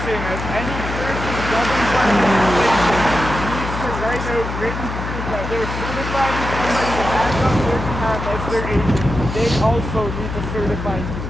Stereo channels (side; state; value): left; noise; hum, 6 dB below the sound